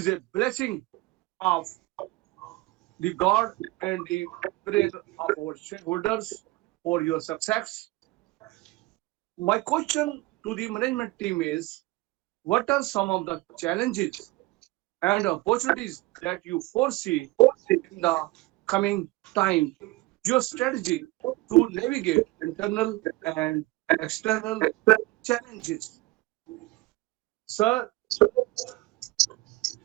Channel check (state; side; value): quieter; left; 20.2 dB